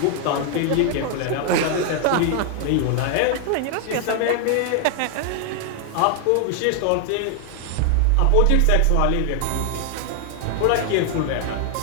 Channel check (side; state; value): both; different; correlation 0.00